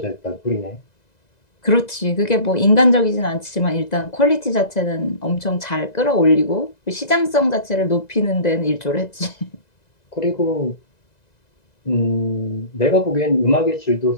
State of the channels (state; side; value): late; right; 2.0 ms